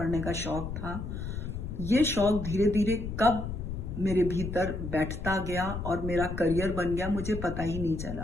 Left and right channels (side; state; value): left; noise; rumble, 6 dB below the sound